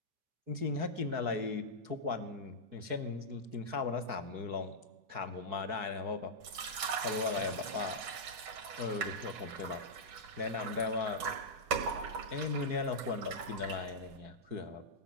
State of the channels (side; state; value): left; late; 8.2 ms